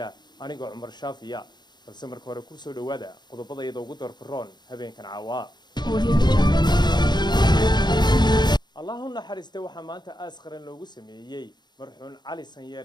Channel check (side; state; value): right; late; 0.21 ms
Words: أنا قا عمر شافي يا السمر كوركو سو دوادا قد بدا يدو قدر كرون هبين كان عوا اللهم حرسته وحمانته أسخرن لوجو سمية مرحون علي